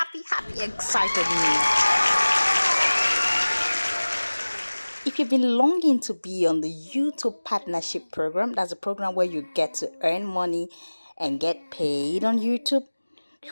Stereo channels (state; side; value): inverted; both; correlation -1.00